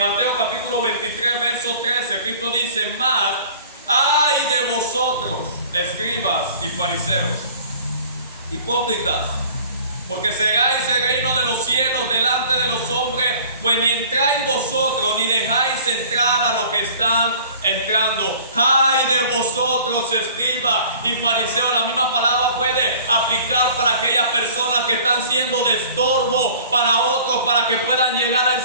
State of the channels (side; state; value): both; inverted; correlation -0.48